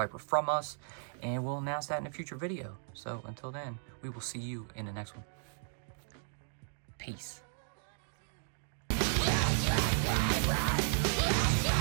from us. And we'll announce that in a future video. So until then, we will see you in the next one. Peace.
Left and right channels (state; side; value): silent; left; digital silence